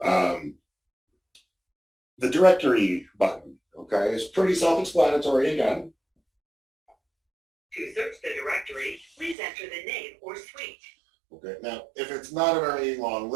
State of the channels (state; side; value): drops out; left; at 9.3 s